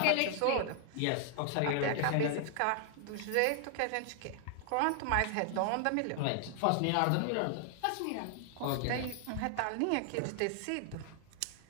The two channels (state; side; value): different; both; correlation 0.00